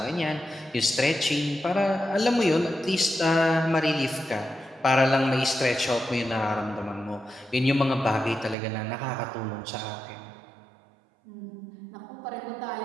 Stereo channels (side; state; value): left; drops out; at 8.6 s